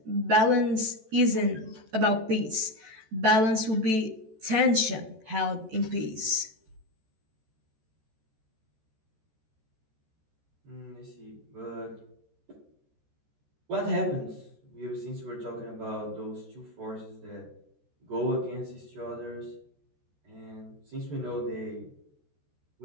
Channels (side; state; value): left; late; 14 ms